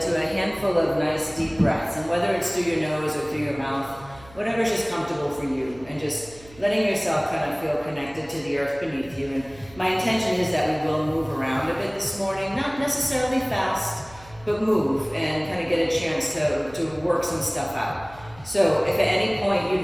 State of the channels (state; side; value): noise; right; hum, 22 dB below the sound